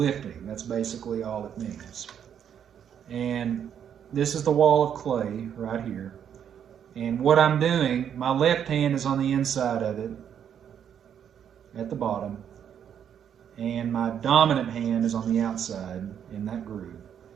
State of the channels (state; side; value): quieter; left; 8.7 dB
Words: That's basically all it means. And this is the wall of clay right here. And what I'm doing, my left hand is on the inside of it at the bottom, and my dominant hand is on the outside in that groove.